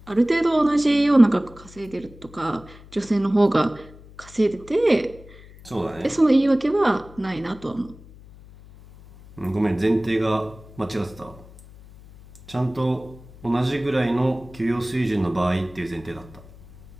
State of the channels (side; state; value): left; noise; hum, 21 dB below the sound